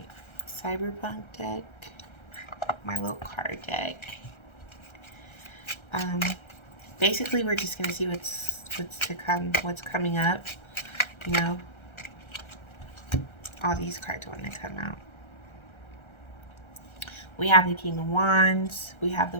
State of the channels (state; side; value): late; right; 1.3 ms